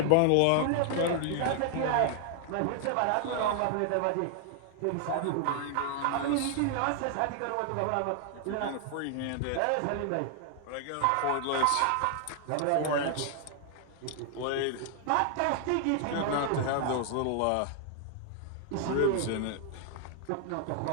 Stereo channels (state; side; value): different; both; correlation 0.00